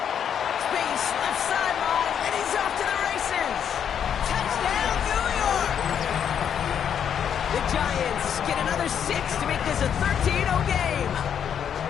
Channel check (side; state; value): right; quieter; 8.4 dB